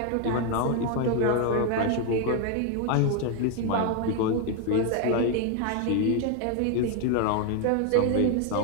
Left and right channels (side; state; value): both; different; correlation 0.01